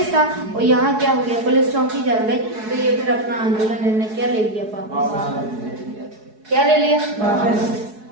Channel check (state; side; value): late; left; 4.7 ms